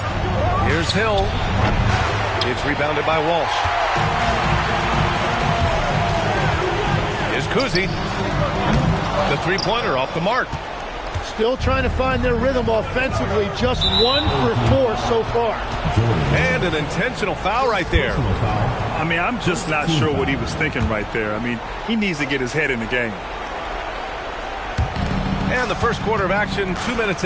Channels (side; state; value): both; identical; correlation 1.00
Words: Here's Hill. It's rebounded by Walsh. Here's Kuzi. The three-pointer off the mark. Still trying to find their rhythm offensively. Just 1 for 4 so far. And an intentional foul right there. I mean, I'm just not sure what he was thinking right there. I mean, he needs to get his head in the game. And the first quarter of action, 2 minutes